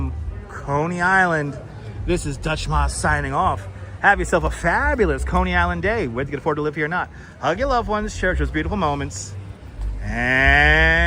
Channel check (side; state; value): both; identical; correlation 1.00